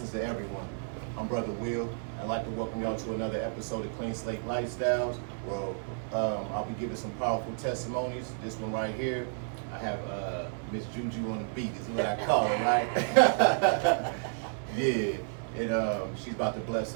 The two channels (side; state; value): left; silent; 57 dB below the other